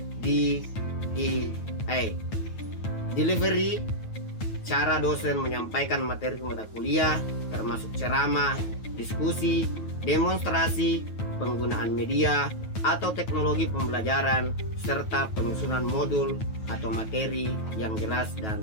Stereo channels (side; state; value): right; late; 9.3 ms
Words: DEA. Delivery, cara dosen menyampaikan materi mata kuliah, termasuk ceramah, diskusi, demonstrasi, penggunaan media atau teknologi pembelajaran, serta penyusunan modul atau materi yang jelas dan